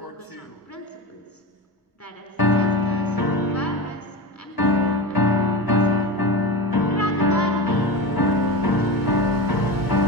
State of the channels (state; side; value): normal; both; correlation 0.25